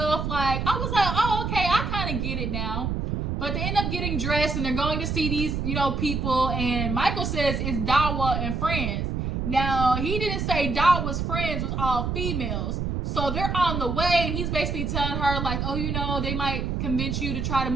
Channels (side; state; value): right; noise; rumble, 1 dB below the sound